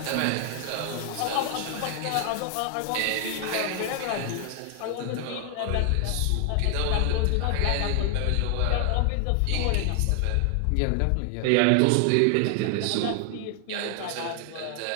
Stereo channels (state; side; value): different; both; correlation 0.00